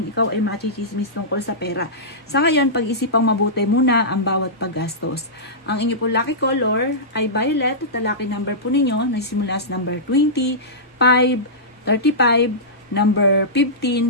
ikaw ay machichismis tungkol sa pera. Sa ngayon, pag-isipang mabuti muna ang bawat paggastos. Ang inyo po lucky color ay violet at ang lucky number po ninyo nagsimula sa number 20, 5, 35, number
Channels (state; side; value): normal; both; correlation -0.17